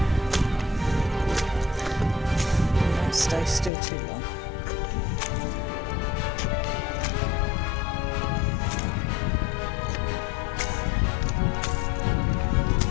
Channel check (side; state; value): right; drops out; at 3.7 s